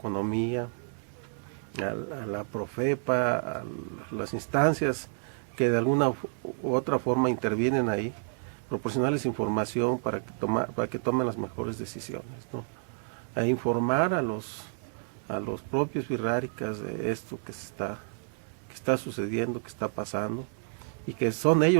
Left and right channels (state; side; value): silent; left; digital silence